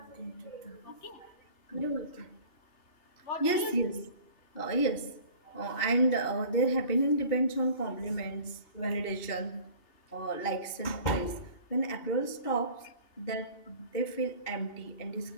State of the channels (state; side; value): late; right; 2.7 ms